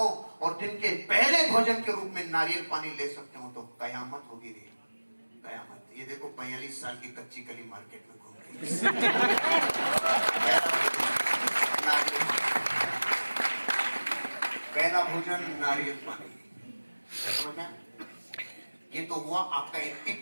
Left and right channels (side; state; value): both; inverted; correlation -1.00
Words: और दिन के पहले भोजन के रूप में नारियल पानी ले सकते हो तो कयामत होगी रे, कयामत। ये देखो 45 साल की कच्ची कली मार्केट में घूम रही पहला भोजन नारियल पानी, समझ? ये तो हुआ आपका